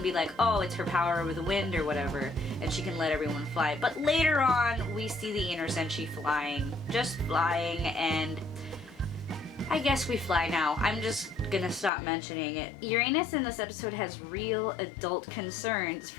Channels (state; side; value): drops out; right; at 11.9 s